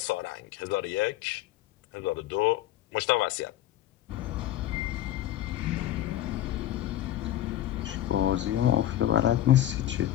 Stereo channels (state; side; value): quieter; right; 13.0 dB